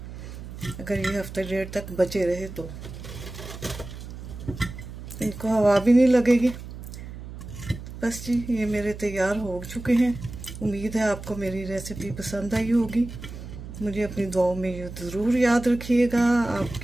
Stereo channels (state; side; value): noise; right; hum, 11 dB below the sound